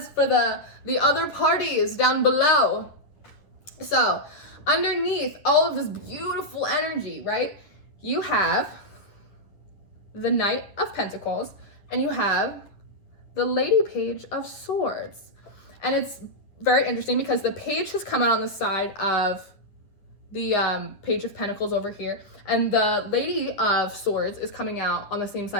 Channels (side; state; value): right; late; 9.6 ms